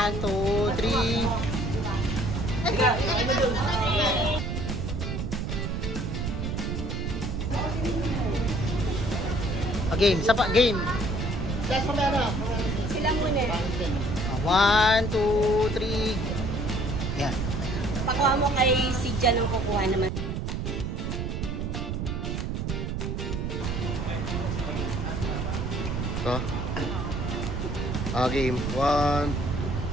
2, 3. Game, isa pa, game. Sila muna. 1, 2, 3. Yan. Pakuha mo kay si Jan ang kukuha naman. Ito. Game. 1.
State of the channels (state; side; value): noise; right; rumble, 2 dB below the sound